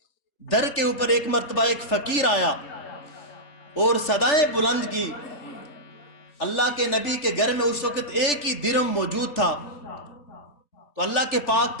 در کے اوپر ایک مرتبہ ایک فقیر آیا اور صدائیں بلند کی۔ اللہ کے نبی کے گھر میں اس وقت ایک ہی درہم موجود تھا، تو اللہ کے پاک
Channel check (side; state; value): right; late; 3.4 ms